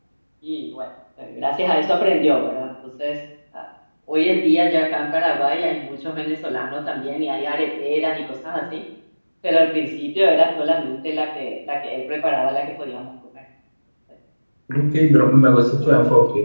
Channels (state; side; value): inverted; both; correlation -1.00